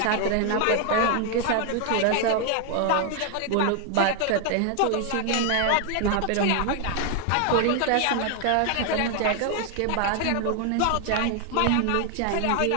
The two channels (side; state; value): both; different; correlation 0.00